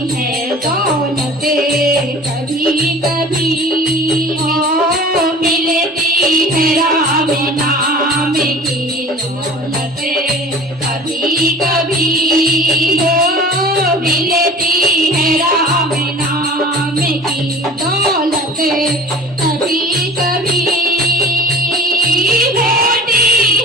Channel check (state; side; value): normal; both; correlation 0.43